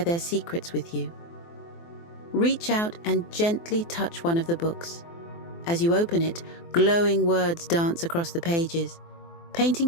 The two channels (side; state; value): right; late; 24 ms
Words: their secrets with you. Reach out and gently touch one of the books. As you open it, glowing words dance across the pages, painting